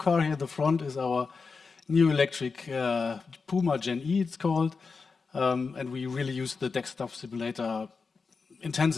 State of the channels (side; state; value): right; quieter; 4.8 dB